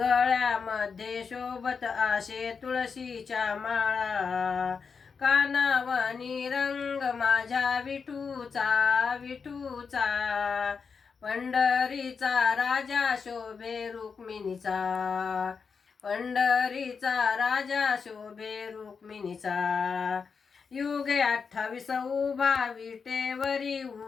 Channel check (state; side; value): quieter; right; 5.6 dB